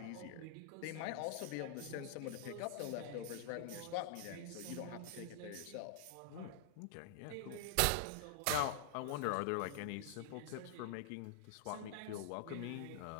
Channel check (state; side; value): different; both; correlation -0.01